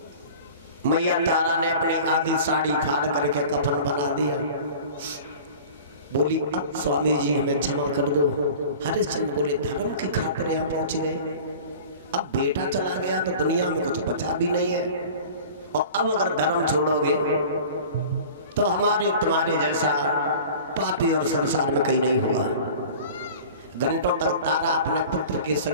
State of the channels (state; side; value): inverted; both; correlation -0.41